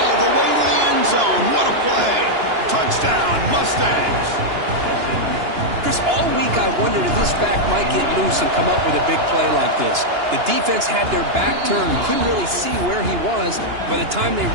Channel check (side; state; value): left; late; 2.9 ms